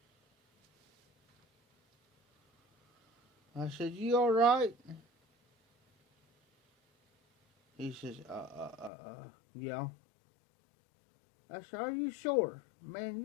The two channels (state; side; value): drops out; right; at 8.9 s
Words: I said, you alright? He says, yeah. I said, are you sure? Man,